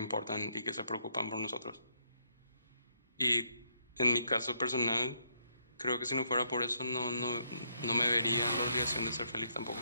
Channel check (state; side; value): inverted; both; correlation -0.73